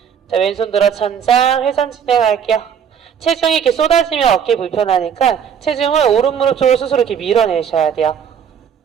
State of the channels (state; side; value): quieter; left; 7.9 dB